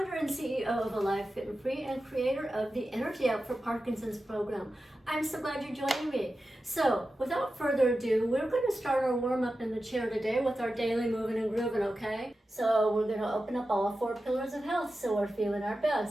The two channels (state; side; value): normal; both; correlation 0.92